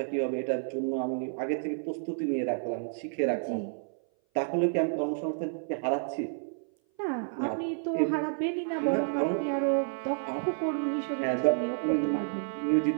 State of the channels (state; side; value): silent; left; 56 dB below the other